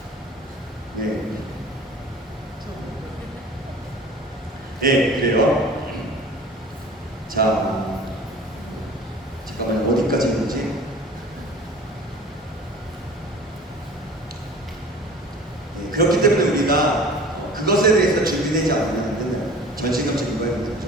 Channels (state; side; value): normal; both; correlation 0.43